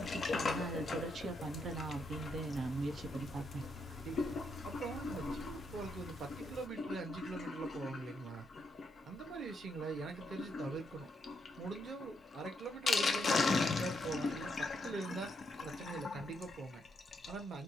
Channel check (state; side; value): normal; both; correlation 0.78